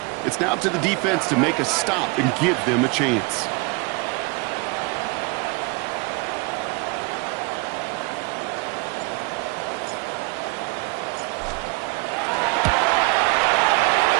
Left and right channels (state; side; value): quieter; left; 28.1 dB